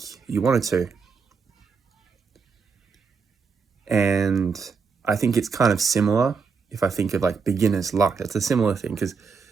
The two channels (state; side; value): quieter; left; 5.4 dB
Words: you wanted to. And I think it's kind of similar if I think of like beginner's luck. It's a similar thing because